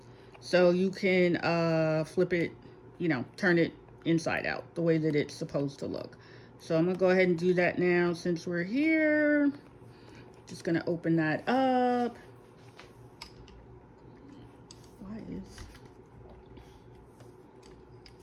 so you can flip it, turn it inside out the way that it's supposed to look. So I'm gonna go ahead and do that now since we're here. Just gonna open that up.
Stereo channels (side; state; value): both; identical; correlation 1.00